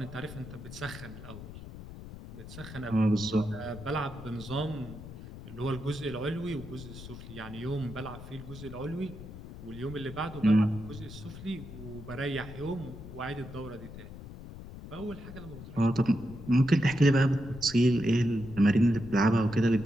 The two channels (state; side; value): noise; left; rumble, 13 dB below the sound